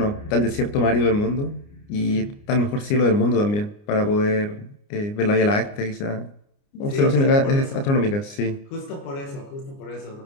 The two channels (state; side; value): late; right; 29 ms